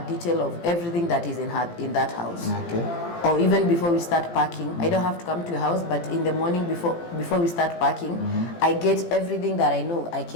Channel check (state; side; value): late; right; 17 ms